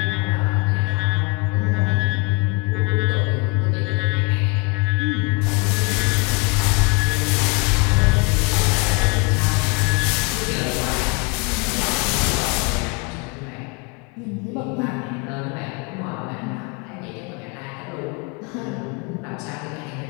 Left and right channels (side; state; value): right; quieter; 32.6 dB